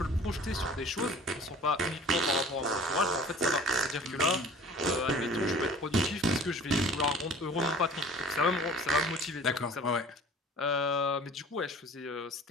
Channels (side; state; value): both; normal; correlation 0.46